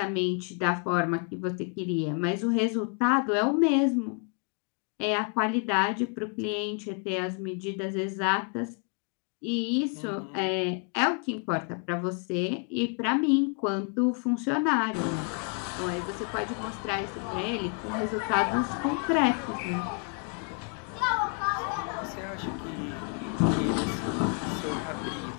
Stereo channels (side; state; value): right; quieter; 37.7 dB